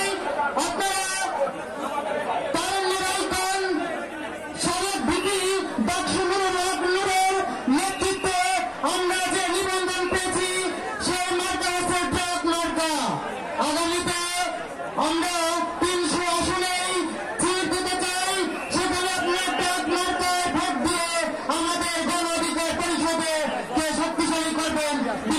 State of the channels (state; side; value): identical; both; correlation 1.00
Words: আপনারা তারুণ্যরাইকন সাবেক ভিপি ডাকসু নুরের নেতৃত্বে আমরা যে নিবন্ধন পেয়েছি সেই মার্কা হচ্ছে ট্রাক মার্কা। আগামীতে আমরা 300 আসনেই সিট দিতে চাই, সেখানে আপনার ট্রাক মার্কায় ভোট দিয়ে আমাদের গণ অধিকার পরিষদে কে শক্তিশালী করবেন,